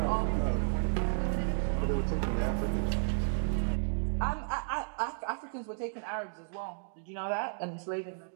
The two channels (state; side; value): silent; left; digital silence